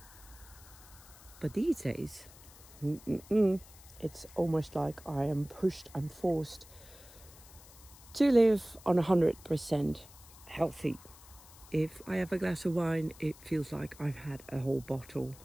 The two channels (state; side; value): noise; left; hiss, 21 dB below the sound